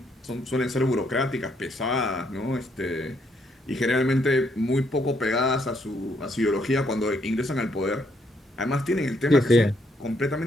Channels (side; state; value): both; normal; correlation 0.72